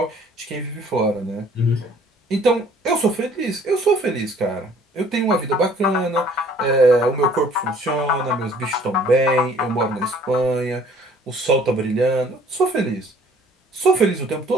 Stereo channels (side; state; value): both; normal; correlation 0.56